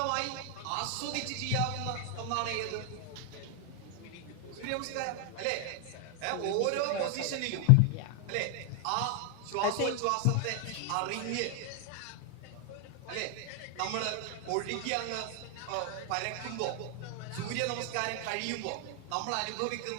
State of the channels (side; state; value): both; different; correlation 0.00